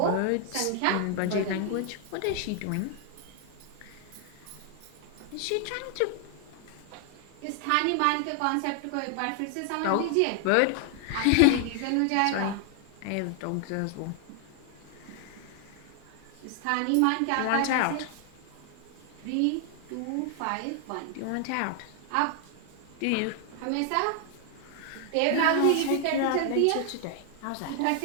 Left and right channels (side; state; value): both; different; correlation 0.00